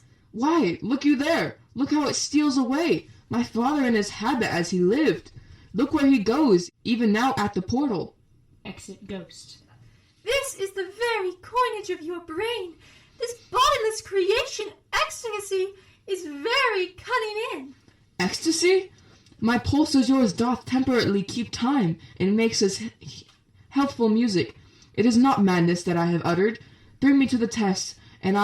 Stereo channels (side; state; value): both; identical; correlation 1.00